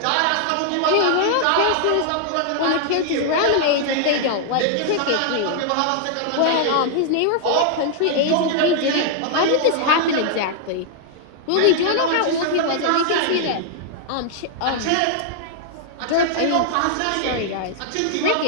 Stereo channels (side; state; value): both; different; correlation 0.00